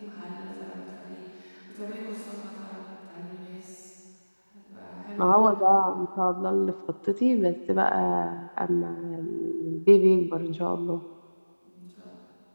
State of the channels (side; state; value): both; inverted; correlation -1.00